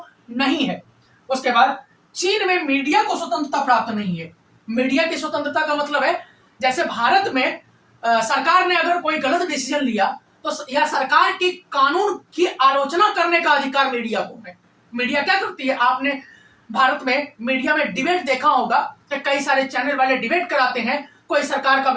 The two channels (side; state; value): both; identical; correlation 1.00